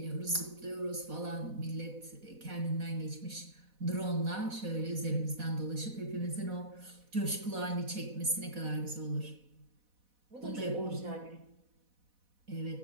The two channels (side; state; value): left; late; 4.1 ms